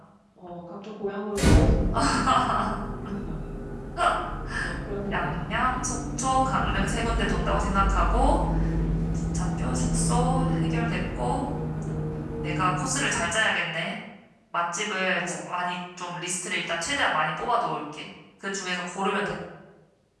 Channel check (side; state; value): both; identical; correlation 1.00